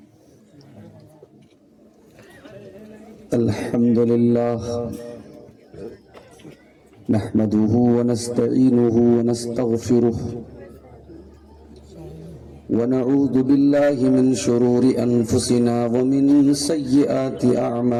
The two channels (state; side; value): identical; both; correlation 1.00